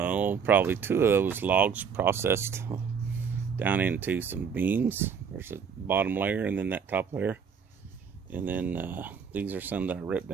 probably 2 of those logs processed down into some beams. There's a bottom layer and then that top layer, and then these are some that I ripped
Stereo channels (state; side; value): quieter; left; 6.5 dB